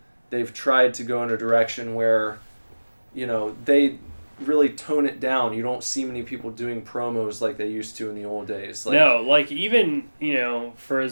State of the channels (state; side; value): inverted; both; correlation -1.00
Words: they've tried to go in a direction where, you know, they really tone it down. You don't see many people doing promos like they used to in the old days. Like, No, like, even, you know, for